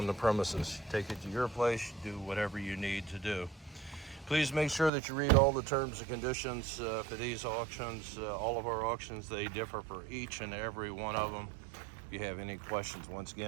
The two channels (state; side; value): drops out; left; at 4.9 s